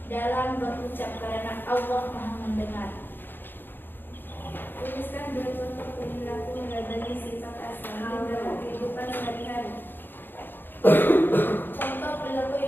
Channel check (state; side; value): late; right; 0.096 ms